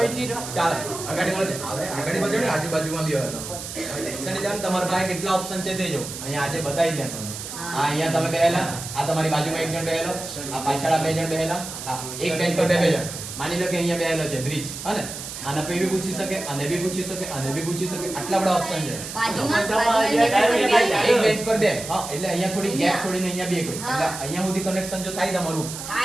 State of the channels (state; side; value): noise; right; hiss, 9 dB below the sound